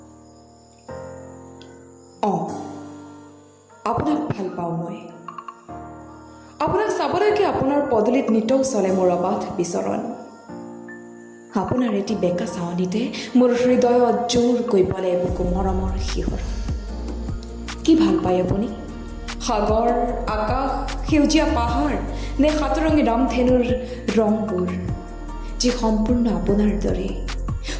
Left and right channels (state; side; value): identical; both; correlation 1.00